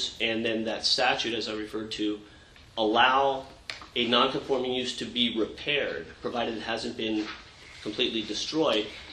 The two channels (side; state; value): both; identical; correlation 1.00